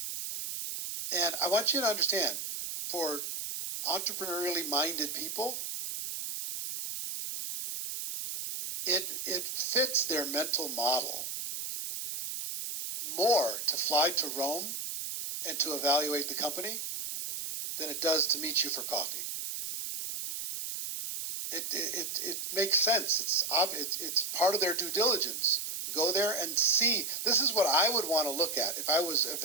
And I want you to understand, for entrepreneurially minded people, it fits their mental model more to fly to Rome and to evaluate the company than it does to meet you for coffee. It makes sense. It's part of their due diligence. Go there and see. This is what I would want to look at if I was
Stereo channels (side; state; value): right; noise; hiss, 5 dB below the sound